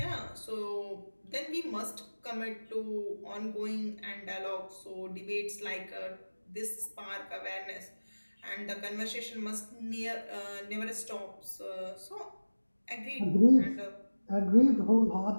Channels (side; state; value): both; inverted; correlation -1.00